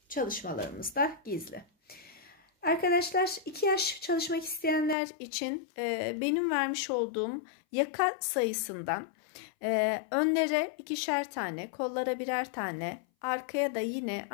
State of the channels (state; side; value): drops out; right; at 5.0 s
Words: çalışmalarımızda gizli. Arkadaşlar 2 yaş çalışmak isteyenler için benim vermiş olduğum yaka sayısından önlere 2'şer tane, kollara birer tane, arkaya da yine